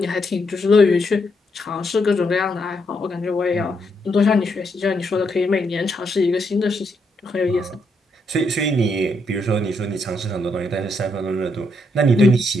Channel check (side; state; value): both; normal; correlation 0.78